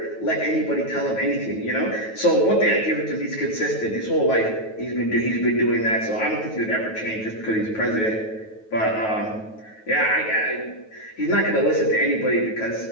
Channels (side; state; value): right; late; 9.2 ms